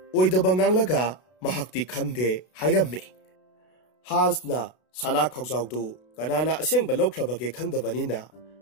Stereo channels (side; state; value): right; late; 32 ms